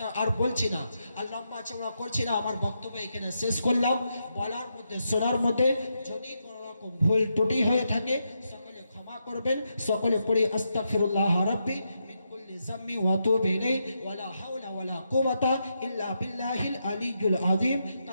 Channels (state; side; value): inverted; both; correlation -0.83